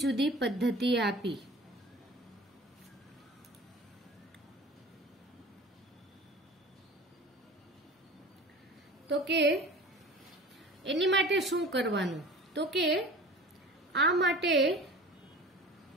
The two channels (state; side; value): normal; both; correlation 0.40